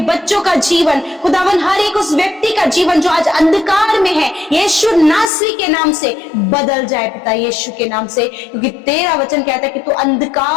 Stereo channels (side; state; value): right; drops out; at 5.3 s